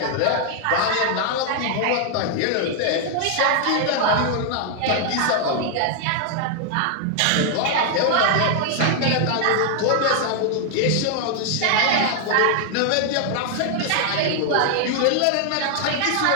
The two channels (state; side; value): different; both; correlation 0.00